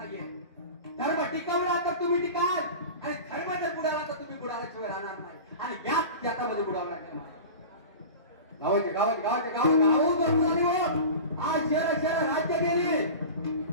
धर्म टिकवला तर तुम्ही टिकाल आणि धर्म जर बुडाला तर तुम्ही बुडाल्याशिवाय राहणार नाही. आणि याच याच्यामध्ये बुडावं लागेल. गावाचे गावाचे गावाचे गाव आज शहर राज्य गेली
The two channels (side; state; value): both; inverted; correlation -0.33